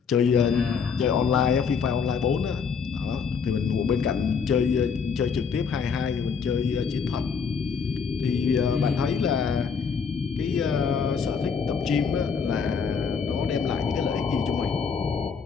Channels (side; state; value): right; quieter; 6.0 dB